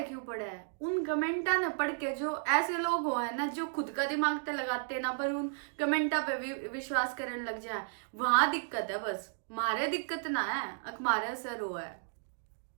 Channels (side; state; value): left; silent; digital silence